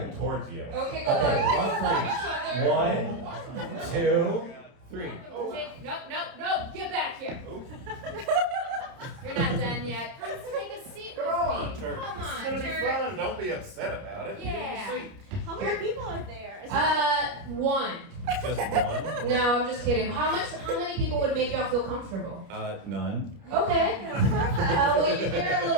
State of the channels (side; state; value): left; late; 30 ms